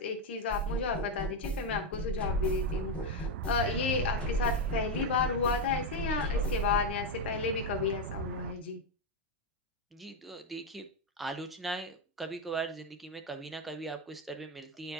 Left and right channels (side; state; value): both; normal; correlation 0.05